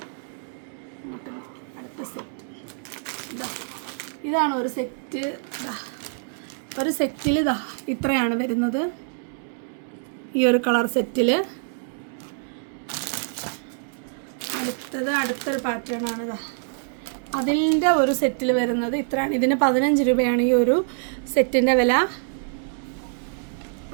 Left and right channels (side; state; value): left; silent; 61 dB below the other